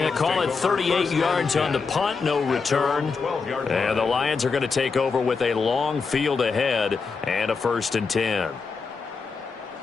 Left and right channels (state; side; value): quieter; right; 4.9 dB